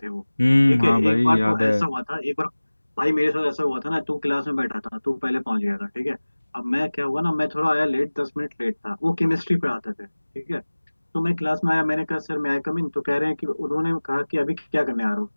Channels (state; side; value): inverted; both; correlation -1.00